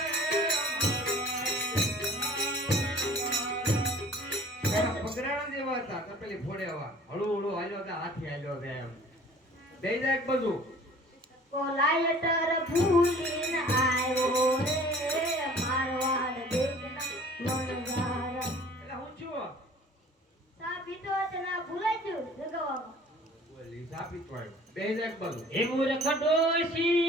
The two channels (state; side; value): normal; both; correlation 0.49